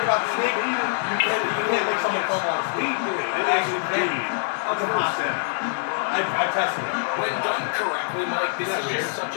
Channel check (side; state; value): right; silent; digital silence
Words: about the sneak? You can't make someone come on a sneak. It is indeed a first down. I tested it. When done correctly, Mike, this is just such